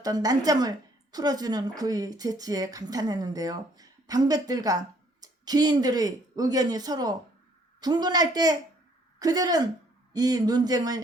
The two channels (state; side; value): normal; both; correlation 0.63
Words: 난점을 풀어주는 그의 재치에 감탄했는데요. 방백들과 귀인들의 의견이 서로 분분할 때 그들은 이